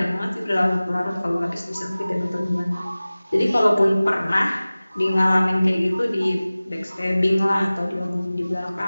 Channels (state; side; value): inverted; both; correlation -0.98